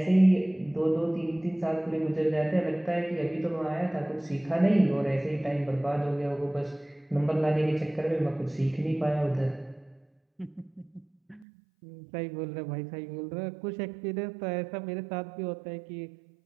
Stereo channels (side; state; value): left; drops out; at 11.5 s